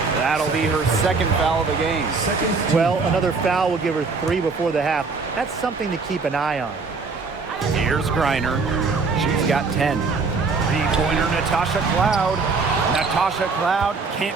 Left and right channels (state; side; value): quieter; left; 4.4 dB